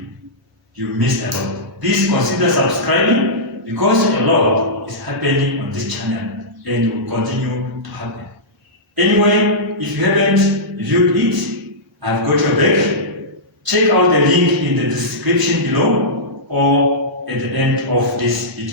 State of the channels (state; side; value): normal; both; correlation -0.14